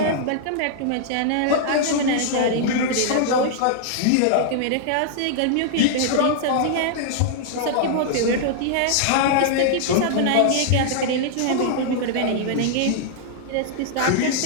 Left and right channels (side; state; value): both; different; correlation -0.01